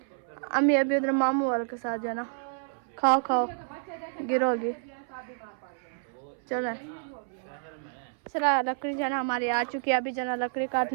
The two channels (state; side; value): silent; left; 58 dB below the other